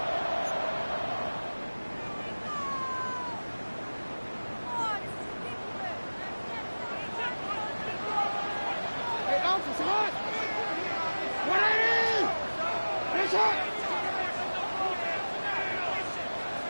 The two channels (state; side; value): inverted; both; correlation -1.00